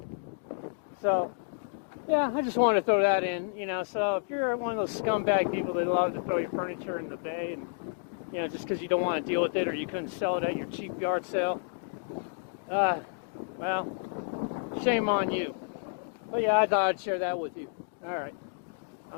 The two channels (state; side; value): silent; right; digital silence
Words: So, yeah, I just wanted to throw that in, you know. So if you're one of those scumbag people that love to throw your furniture in the bay, and you know, just because you don't want to deal with it or you couldn't sell it at your cheap yard sale, well, shame on you. But yeah, I thought I'd share that with you. All right,